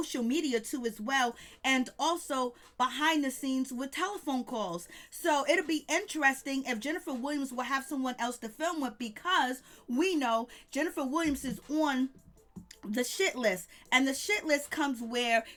media too as well, and also behind the scenes with telephone calls. So it'll be interesting if Jennifer Williams will have someone else to film with, because we know Jennifer Williams is on the shit list, and the shit list comes where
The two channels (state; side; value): identical; both; correlation 1.00